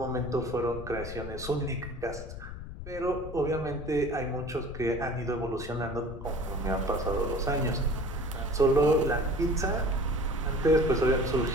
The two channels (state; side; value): noise; left; rumble, 10 dB below the sound